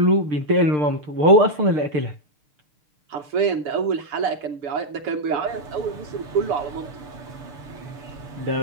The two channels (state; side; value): late; left; 6.6 ms